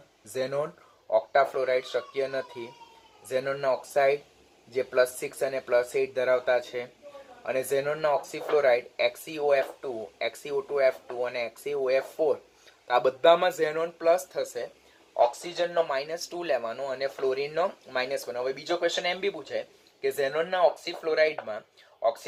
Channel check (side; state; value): both; identical; correlation 1.00